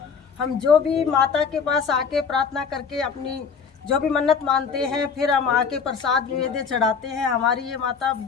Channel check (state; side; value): quieter; right; 6.0 dB